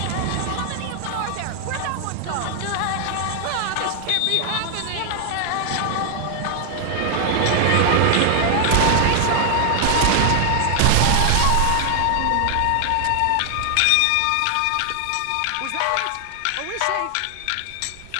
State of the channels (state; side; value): different; both; correlation 0.00